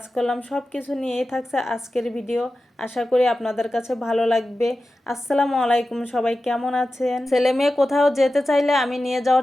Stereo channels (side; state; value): both; normal; correlation 0.93